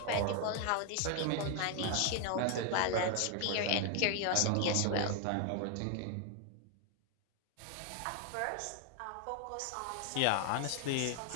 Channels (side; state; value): both; different; correlation 0.00